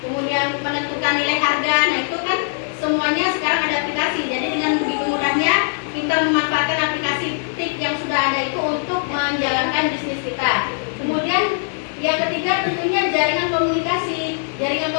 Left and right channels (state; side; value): silent; right; digital silence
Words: kemudian menentukan nilai harga. Nah itu kan semuanya sekarang ada aplikasi. Jadi dengan begitu mudahnya kita memanfaatkan aplikasi TIP yang sudah ada itu untuk menjalankan bisnis kita. Kemudian yang ketiga tentunya jaringan komunikasi. Jaringan